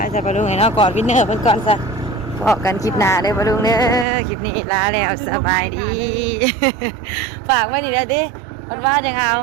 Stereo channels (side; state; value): left; drops out; at 4.0 s